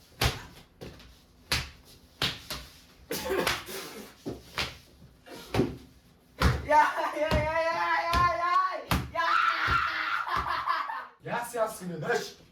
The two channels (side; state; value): both; identical; correlation 1.00